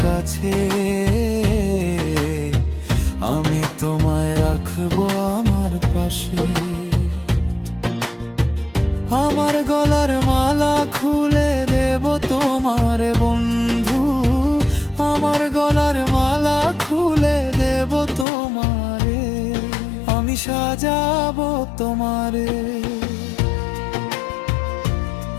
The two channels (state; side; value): drops out; right; at 18.2 s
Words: কাছে, আমি তোমায় রাখবো আমার পাশে। আমার গলার মালা খুলে দেব তোমার বন্ধু, আমার গলার মালা খুলে দেব তোমারে, আমি সাজাবো তোমারে